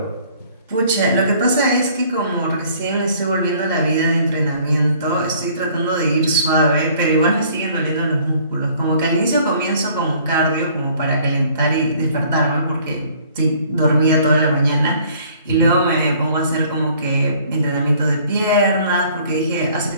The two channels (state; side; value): inverted; both; correlation -0.57